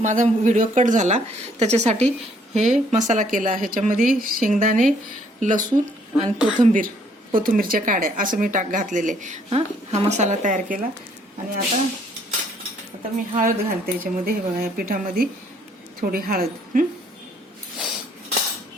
व्हिडिओ कट झाला, त्याच्यासाठी हे मसाला केला. ह्याच्यामध्ये शेंगदाणे, लसूण आणि कोथिंबीरच्या काड्या असं मी घातलेले. हा मसाला तयार केला. आणि आता मी हळद घालते याच्यामध्ये. हे बघा, या पिठामध्ये थोडी हळद,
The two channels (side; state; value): both; normal; correlation 0.65